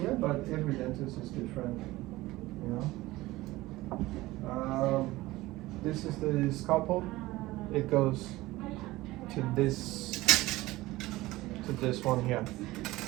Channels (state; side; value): quieter; left; 18.5 dB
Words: but every dentist is different, you know. This is the scalpel. It goes to this one here.